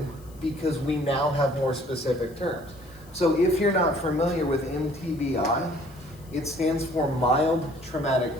because we now have more specific terms. So if you're not familiar with MTBI, it stands for mild traumatic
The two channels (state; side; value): noise; left; hiss, 26 dB below the sound